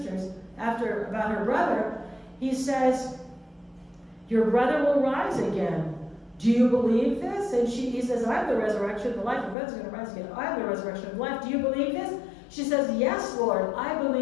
about her brother, he says, your brother will rise again. Do you believe this? And he says, I'm the resurrection and the life. Your brother's going to rise again. I'm the resurrection and life. Do you believe this? She says, yes, Lord, I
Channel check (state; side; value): drops out; right; at 9.6 s